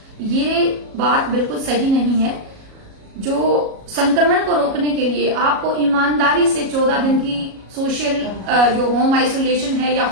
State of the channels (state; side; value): late; left; 37 ms